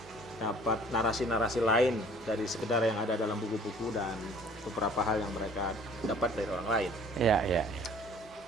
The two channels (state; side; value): normal; both; correlation 0.53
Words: dapat narasi-narasi lain dari sekedar yang ada dalam buku-buku dan beberapa hal yang mereka dapat dari orang lain. Ya.